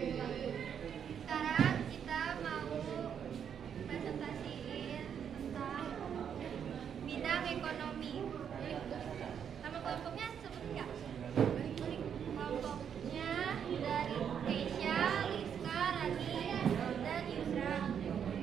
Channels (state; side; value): quieter; left; 8.1 dB